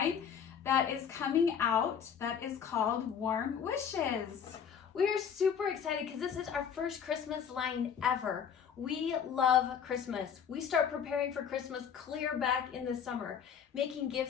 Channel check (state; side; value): quieter; right; 7.6 dB